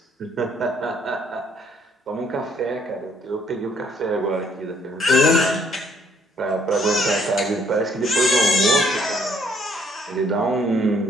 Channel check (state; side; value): normal; both; correlation 0.65